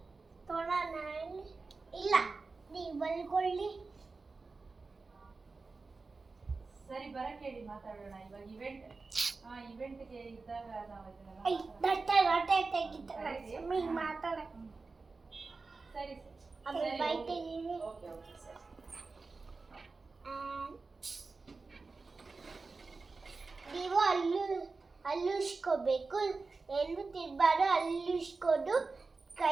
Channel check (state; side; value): quieter; left; 4.0 dB